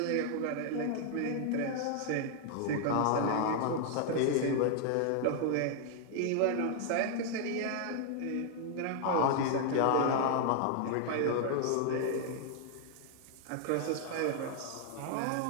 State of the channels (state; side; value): different; both; correlation 0.00